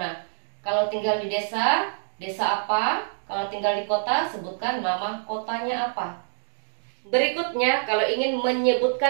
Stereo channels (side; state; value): left; silent; digital silence